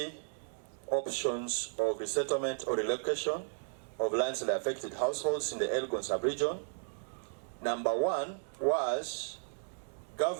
options of resettlement or relocation of landslide affected households in the Elgon sub-region. Number 1 was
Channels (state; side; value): silent; left; digital silence